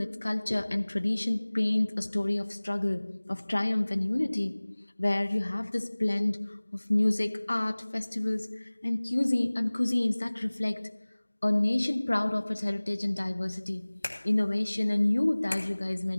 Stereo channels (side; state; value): both; inverted; correlation -1.00